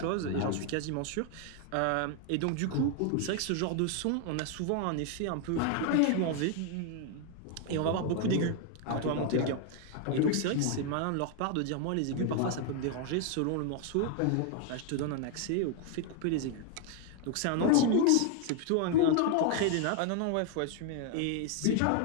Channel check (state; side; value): different; both; correlation 0.00